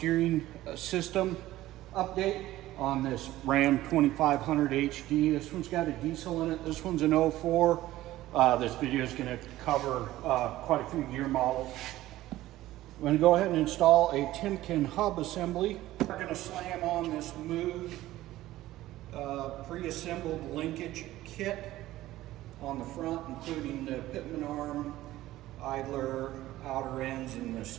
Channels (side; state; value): left; quieter; 15.6 dB